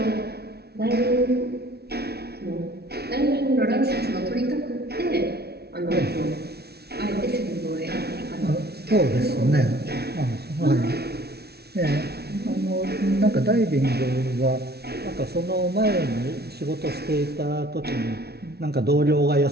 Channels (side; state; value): left; late; 0.47 ms